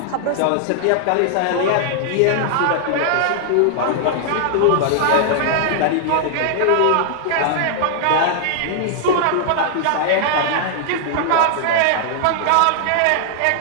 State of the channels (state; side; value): different; both; correlation -0.01